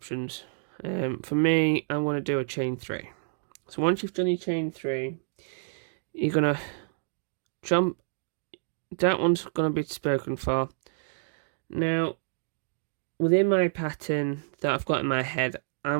For me, I want to do a chain 3. So once you've done your chain 3, you're gonna jump. That one's gonna be spoken for. Now, within my pattern that I've got in my head,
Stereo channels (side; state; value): left; silent; digital silence